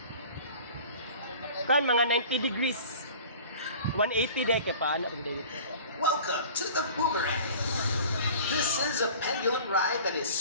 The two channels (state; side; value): inverted; both; correlation -0.43